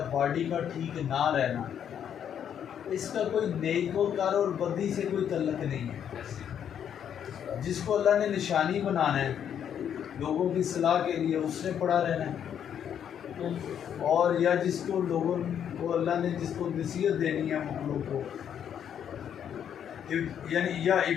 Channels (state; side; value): quieter; right; 8.9 dB